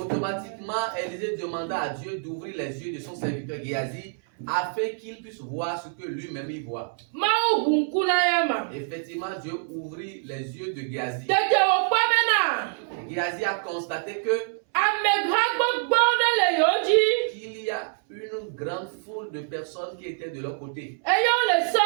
Élisée demanda à Dieu d'ouvrir les yeux de son serviteur Géasi afin qu'il puisse voir ce que lui-même il voit. Effectivement, Dieu ouvrit les yeux de Géasi. Géasi a constaté que qu'il y a une grande foule de personnes qui étaient de leur côté.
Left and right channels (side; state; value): left; silent; 61 dB below the other